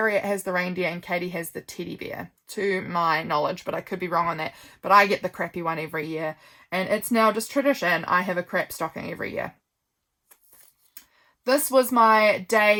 has the reindeer and Katie has the teddy bear, to my knowledge, but I could be wrong on that. But I get the crappy one every year, and it's now just tradition. I have a crap stocking every year. This was my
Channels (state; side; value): identical; both; correlation 1.00